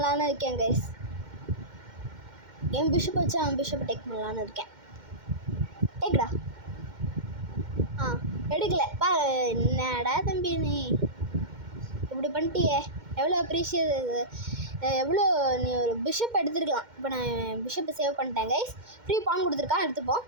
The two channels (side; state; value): left; late; 2.1 ms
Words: இருக்கேன் கைஸ். என் பிஷப்பை வச்சு அவன் பிஷப்பை டேக் பண்ணலான்னு இருக்கேன். டேக்டா. எடுக்கலை. என்னடா தம்பி நீ இப்படி பண்ணிட்டியே. எவ்வளோ அப்ரிஷியேட், எவ்வளோ நீ ஒரு பிஷப் எடுத்துருக்கலாம். இப்போ நான் பிஷப்பை சேவ் பண்ணிட்டேன் கைஸ். ஃப்ரீ பான் கொடுத்துருக்கான், எடுத்துப்போம்.